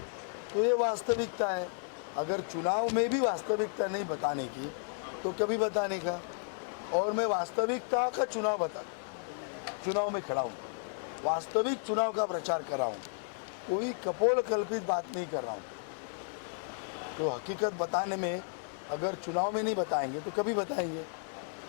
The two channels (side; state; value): right; silent; digital silence